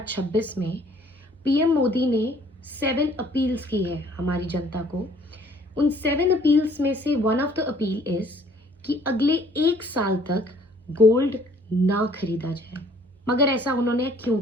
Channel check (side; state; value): both; normal; correlation 0.59